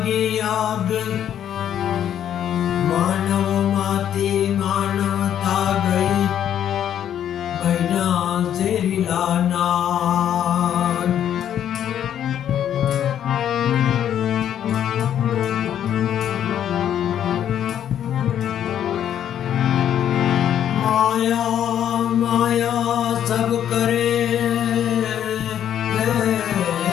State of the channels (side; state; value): right; quieter; 10.1 dB